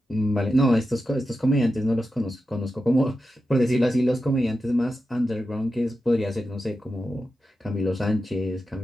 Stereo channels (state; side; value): normal; both; correlation 0.90